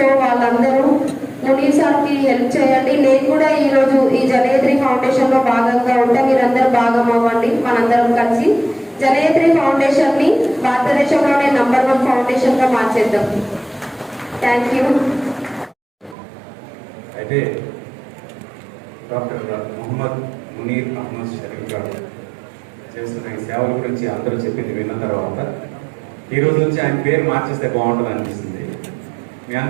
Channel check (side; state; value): left; drops out; at 16.2 s